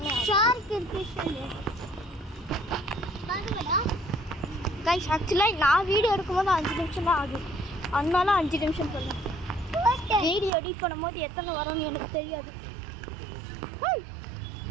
கைஸ். ஆக்சுவலாக நான் வீடியோ எடுக்கும்போது 5 நிமிஷம் தான் ஆகுது, அதனால 5 நிமிஷம் சொல்லுங்கள். வீடியோ எடிட் பண்ணும்போது எத்தனை வரும்னு எனக்கு தெரியாது.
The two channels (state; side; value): drops out; left; at 10.5 s